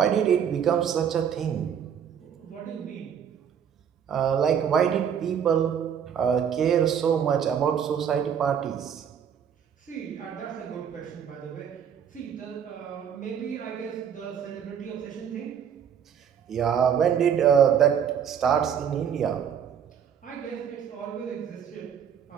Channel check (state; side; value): quieter; left; 8.2 dB